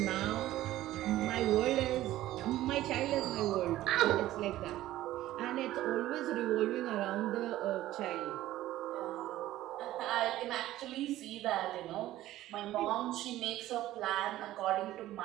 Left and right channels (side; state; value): left; quieter; 14.8 dB